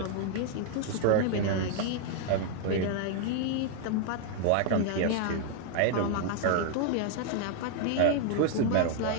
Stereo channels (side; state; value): both; different; correlation 0.00